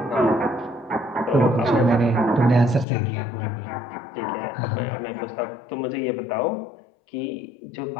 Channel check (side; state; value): right; drops out; at 2.9 s